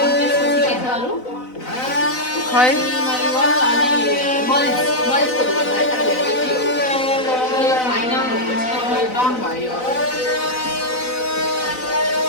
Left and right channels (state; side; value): late; right; 4.0 ms